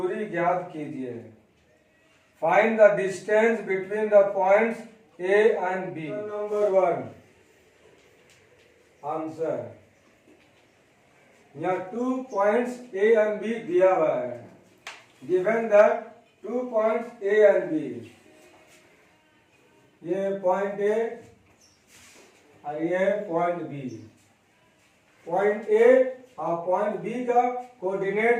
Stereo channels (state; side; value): identical; both; correlation 1.00